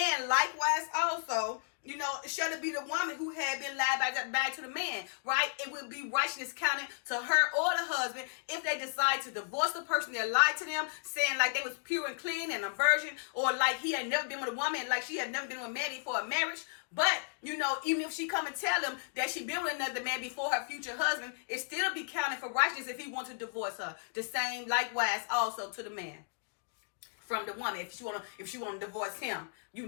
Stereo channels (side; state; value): right; silent; digital silence